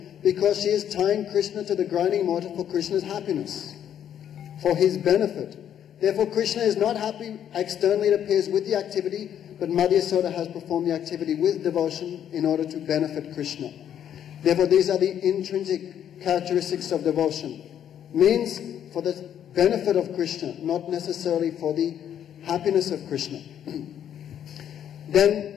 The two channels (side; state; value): right; quieter; 9.7 dB